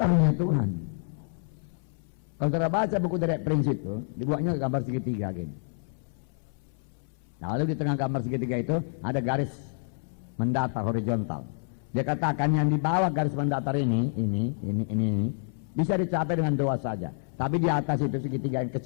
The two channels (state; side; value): silent; right; 59 dB below the other